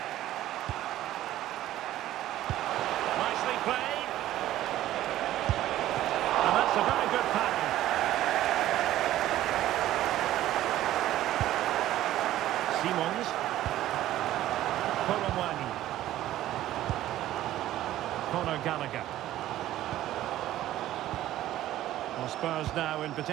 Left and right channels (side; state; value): left; quieter; 13.9 dB